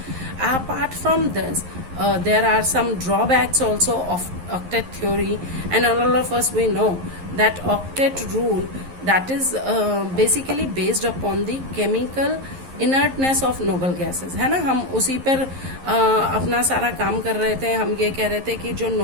Apart from this, there are some drawbacks also of octet theory, and all of us we know that octet rule, that is basically based upon the chemical inertness of noble gases, है ना। हम उसी पर अपना सारा काम कर रहे थे। हम ये कह रहे थे कि जो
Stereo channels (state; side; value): late; left; 11 ms